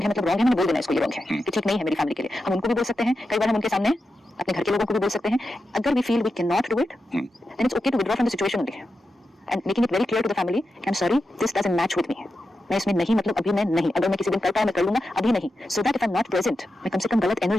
है, मतलब रॉन्ग है, मैंने बोल देना इसको ये रॉन्ग है कि ठीक नहीं है मेरी फैमिली के लिए। हम उनको भी बोल सकते हैं, कई बार हम उनके सामने अपने घर के लोगों को भी बोल सकते हैं। अगर we feel we can not do it, then it's okay to withdraw from the situation only and making it very clear to the family, I am sorry this doesn't match with me, मैं इसमें नहीं, मतलब अभी मैं नहीं, अगर मैं किसी दिन कर पाऊं मैं कर लूंगा, अभी नहीं, so that if I am not present, मैं कम से कम गलत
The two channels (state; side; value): normal; both; correlation 0.89